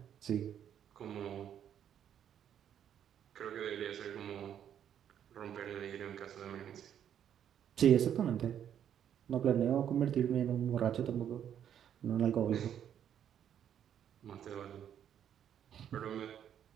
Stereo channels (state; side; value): quieter; left; 9.5 dB